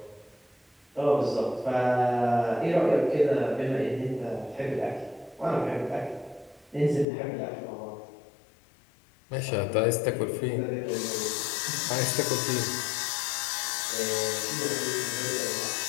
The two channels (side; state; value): right; drops out; at 7.1 s